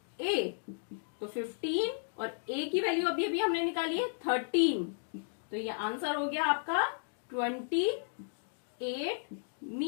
a। तो 15 और a की वैल्यू अभी अभी हमने निकाली है 13, तो ये आंसर हो गया आपका 28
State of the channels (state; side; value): silent; right; digital silence